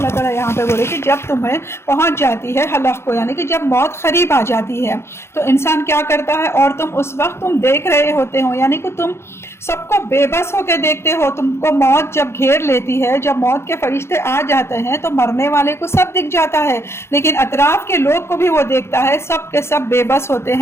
تعالیٰ یہاں پہ بولے کہ جب تمہیں پہنچ جاتی ہے حلق کو، یعنی کہ جب موت قریب آ جاتی ہے تو انسان کیا کرتا ہے، اور تم اس وقت تم دیکھ رہے ہوتے ہو، یعنی کہ تم سب کو بے بس ہو کے دیکھتے ہو. تم کو موت جب گھیر لیتی ہے، جب موت کے فرشتے آ جاتے ہیں تو مرنے والے کو سب دکھ جاتا ہے، لیکن اطراف کے لوگ کو بھی وہ دیکھتا ہے. سب کے سب بے بس ہوتے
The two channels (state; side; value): late; right; 0.12 ms